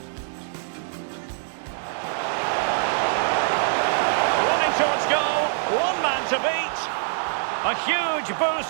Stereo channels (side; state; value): left; silent; digital silence